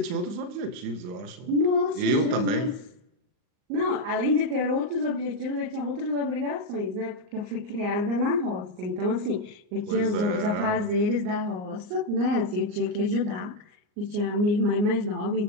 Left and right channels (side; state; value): left; late; 39 ms